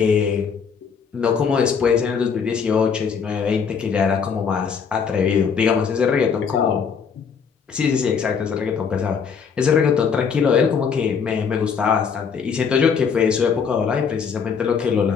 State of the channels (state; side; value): quieter; right; 6.3 dB